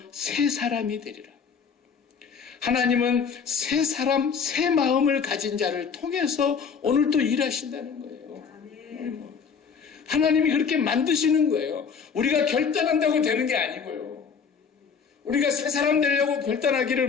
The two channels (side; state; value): right; quieter; 6.2 dB